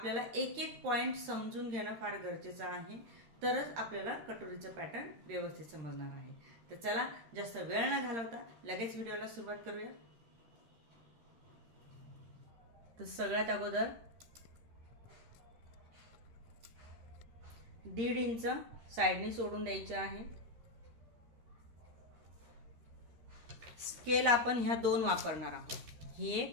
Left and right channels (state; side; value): late; left; 13 ms